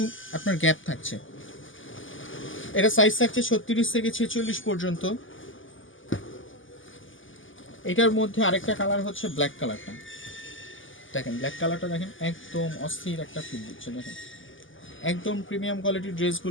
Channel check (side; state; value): right; late; 0.57 ms